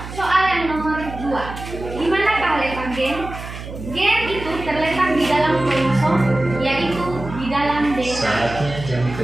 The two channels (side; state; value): right; noise; hum, 11 dB below the sound